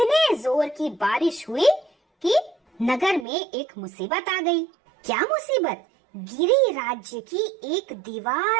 जोर की बारिश हुई कि नगर में एक मुसीबत आ गई। क्या मुसीबत? गिरी राज्य की एक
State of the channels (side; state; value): left; drops out; at 3.2 s